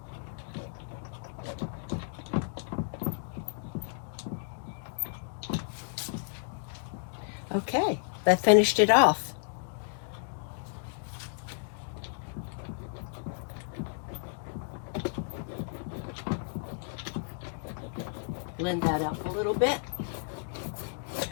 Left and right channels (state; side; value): silent; right; digital silence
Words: Okay, that finished it off. Blend that up a little bit.